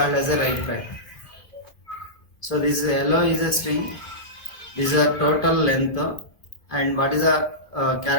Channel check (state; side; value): late; right; 2.5 ms